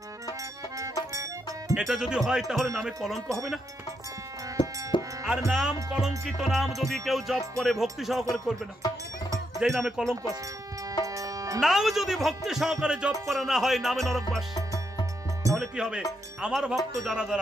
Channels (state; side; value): normal; both; correlation 0.80